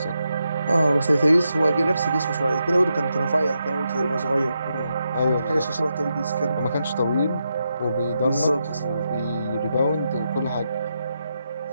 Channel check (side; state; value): both; inverted; correlation -0.85